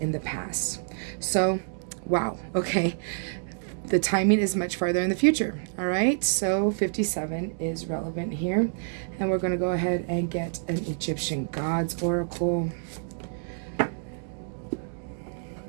the past. So, wow, okay. The timing is much farther in the future, all right? So 57 is relevant here. And we're going to go ahead and get an Egyptian Gods Oracle.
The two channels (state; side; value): silent; left; digital silence